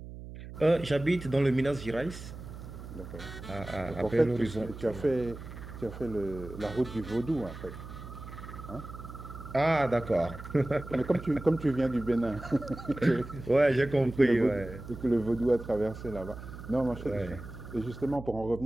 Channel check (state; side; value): noise; right; hum, 12 dB below the sound